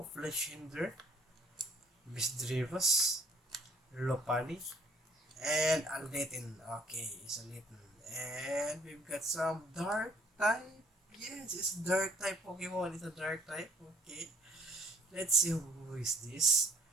Fletchinder, Misdreavus, Lopunny, and a Litten. Okay, it's a Litten. And we've got some Dark type. Yes, it's Dark type Pokemon. It's a Dark type. Okay, let's see who is this.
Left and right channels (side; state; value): both; normal; correlation 0.60